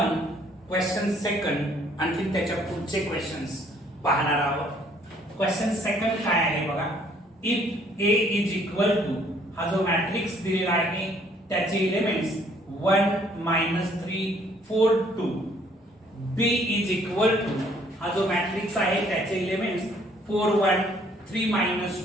क्वेश्चन सेकंड आणखी त्याच्या पुढचे क्वेश्चन्स पाहणार आहोत. क्वेश्चन सेकंड काय आहे बघा. If A is equal to, हा जो मॅट्रिक्स दिलेला आहे त्याचे elements 1 3 4 2. B is equal to, हा जो मॅट्रिक्स आहे त्याचे elements 4 1 3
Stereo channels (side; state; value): both; normal; correlation 0.62